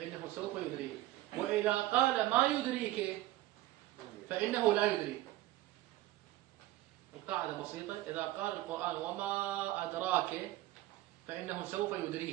سوف يدريه، وإذا قال ما يدريك فإنه لا يدري. القاعدة بسيطة، إذا قال القرآن وما أدراك فإنه سوف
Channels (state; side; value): quieter; left; 16.1 dB